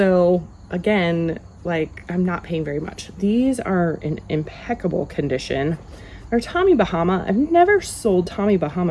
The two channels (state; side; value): identical; both; correlation 1.00